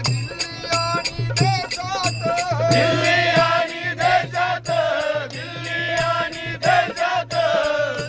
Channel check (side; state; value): both; identical; correlation 1.00